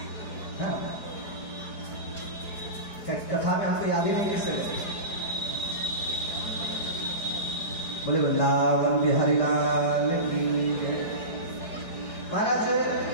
कथा में हमको याद ही नहीं किससे बोले वृंदावन बिहारी लाल की। महाराज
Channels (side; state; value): right; late; 4.8 ms